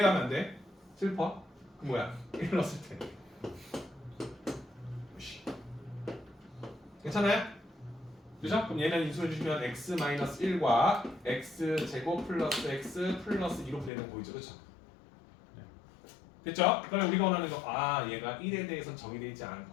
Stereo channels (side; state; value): right; drops out; at 13.9 s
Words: 가면 안 돼? 슬퍼? 그 뭐야? 1 넣었을 때. 괜찮아요? 그죠? 그럼 얘는 인수해 주시면 x-1과 x제곱 플러스 x 플러스 2로 분해되는 거 보이죠? 그렇죠? 됐죠? 그러면 우리가 원하는 거, 아 얘가 1에 대해서는 정의되어 있지